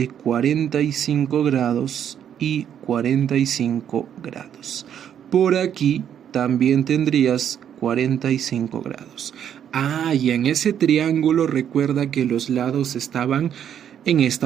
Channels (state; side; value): quieter; left; 9.3 dB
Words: 45 grados y 45 grados. Por aquí también tendrías 45 grados. Y en ese triángulo recuerda que los lados estaban en